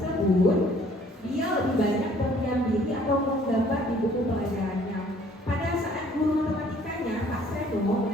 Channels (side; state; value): both; normal; correlation 0.58